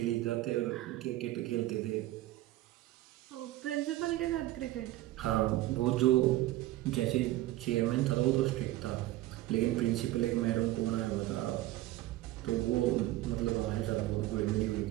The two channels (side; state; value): left; quieter; 16.1 dB